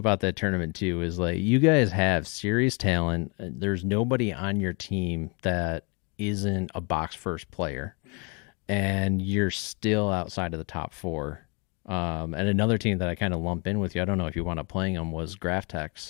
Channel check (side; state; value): right; quieter; 33.1 dB